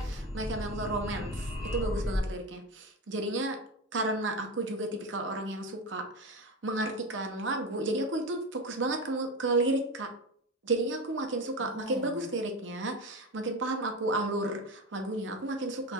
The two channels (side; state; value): both; normal; correlation 0.22